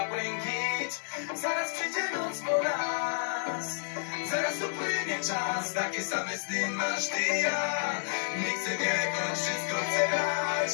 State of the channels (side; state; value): right; silent; digital silence